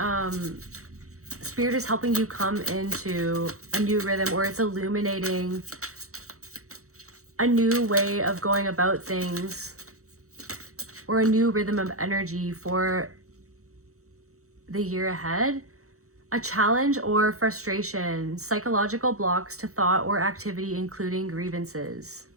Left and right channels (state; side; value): late; left; 0.64 ms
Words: Spirit is helping you come into a new rhythm, or it's illuminating a new way of going about things, or a new rhythm of energy for the year ahead. A challenge or frustration, psychological blocks to thought or activity, including grievances.